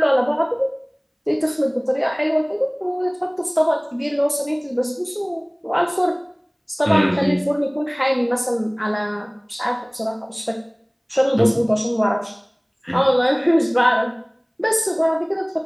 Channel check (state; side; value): identical; both; correlation 1.00